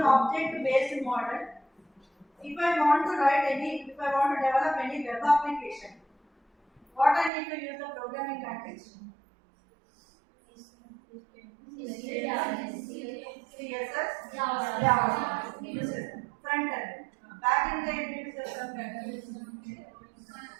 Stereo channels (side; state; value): left; drops out; at 7.3 s